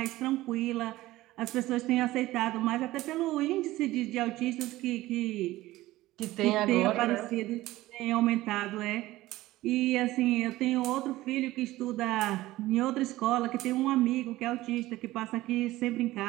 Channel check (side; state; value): left; quieter; 17.1 dB